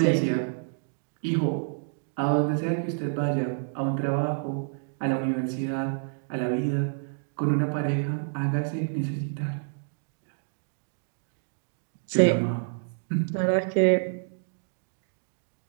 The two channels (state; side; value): silent; left; digital silence